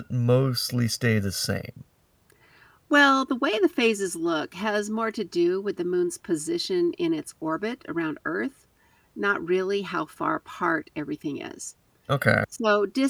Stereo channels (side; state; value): both; identical; correlation 1.00